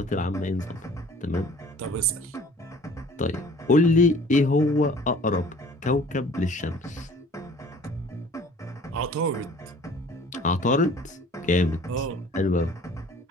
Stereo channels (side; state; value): both; normal; correlation 0.50